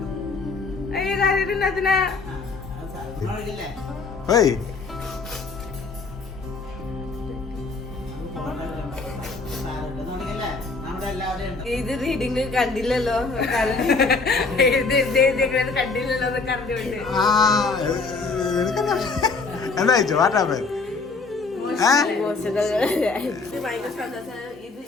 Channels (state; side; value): quieter; right; 4.1 dB